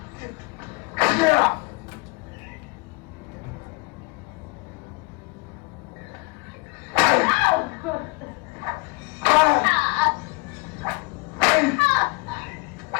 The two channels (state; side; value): quieter; right; 27.7 dB